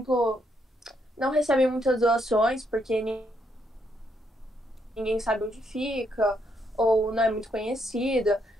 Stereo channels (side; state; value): both; normal; correlation 0.75